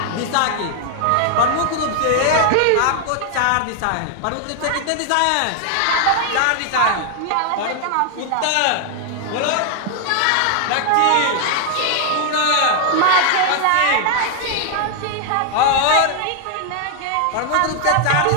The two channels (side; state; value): both; different; correlation 0.00